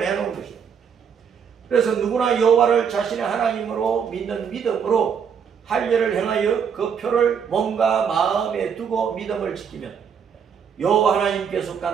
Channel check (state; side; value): quieter; left; 7.2 dB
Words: 해놓은 것이에요. 그래서 누구나 여호와를 자신의 하나님으로 믿는 믿음으로 할례를 행하여 그 표를 몸과 마음에 두고 믿음을 지키면 여호와 하나님께